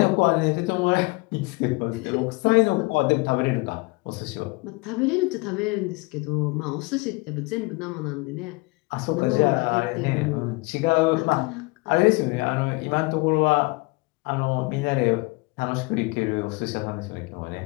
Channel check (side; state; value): right; quieter; 26.1 dB